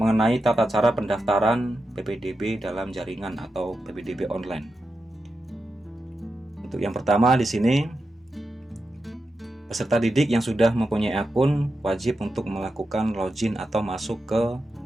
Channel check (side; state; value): both; normal; correlation 0.89